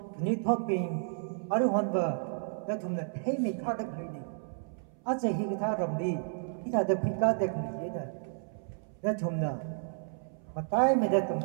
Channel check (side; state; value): left; silent; 57 dB below the other